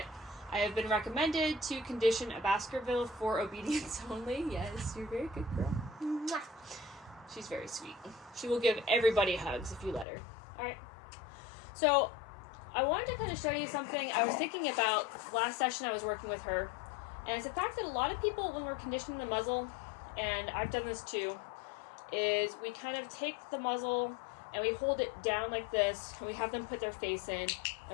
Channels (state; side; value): drops out; right; at 10.1 s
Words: I have been recommended to condition a Baskerville for obedience only. Yes, you're a very good girl. Mwah. She's very sweet. She will give everybody hugs if you let her. Alright. So, I wanted to kind of show you something I was thinking about last session I was working with her. And it's the fact that a lot of people, when we're conditioning the muzzle, and I've done this too, is we kind of take the muzzle and we hold it down like this, and we have them put their face in,